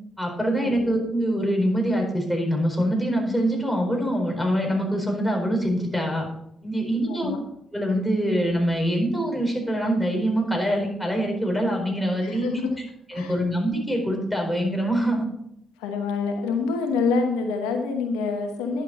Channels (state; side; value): normal; both; correlation 0.80